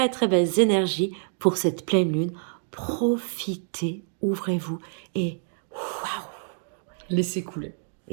très belles énergies pour cette pleine lune. Profitez, ouvrez-vous et waouh! Laissez couler.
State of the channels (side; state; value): left; silent; digital silence